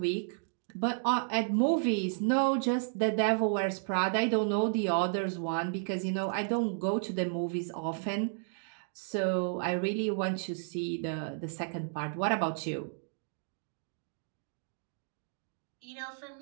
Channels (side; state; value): left; silent; digital silence